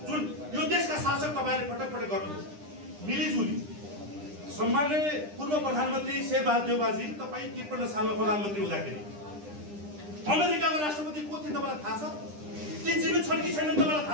जुन यो देशका शासक तपाईँले पटक पटक गर्नुहुन्छ मिलिजुली। सम्माननीय पूर्व प्रधानमन्त्री शेरबहादुर देउवाजी, तपाईँ 53 सालमा प्रधानमन्त्री हुँदाखेरि अमेरिकाको राष्ट्रपति को थिए तपाईँलाई थाहा छ? ती जीवित छन् कि छैनन् तपाईँलाई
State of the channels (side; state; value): left; late; 9.9 ms